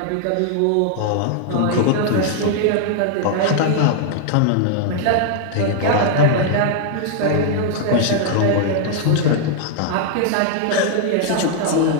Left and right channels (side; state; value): both; different; correlation 0.00